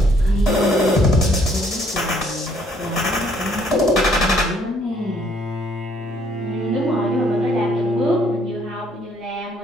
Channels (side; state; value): both; normal; correlation 0.65